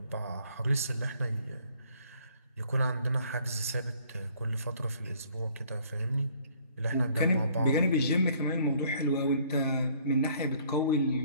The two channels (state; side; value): inverted; both; correlation -0.60